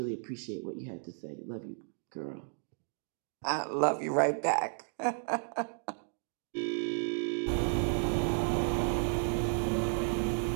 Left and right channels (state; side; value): silent; left; 56 dB below the other